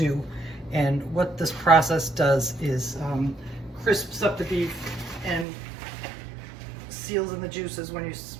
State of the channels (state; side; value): drops out; left; at 5.5 s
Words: And what this process does is crisps up the beef and seals in the juices when